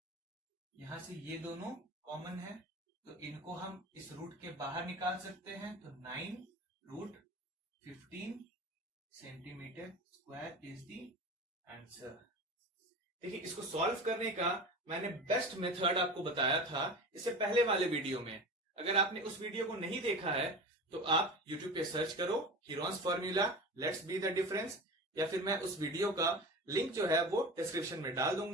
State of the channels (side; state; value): both; normal; correlation 0.32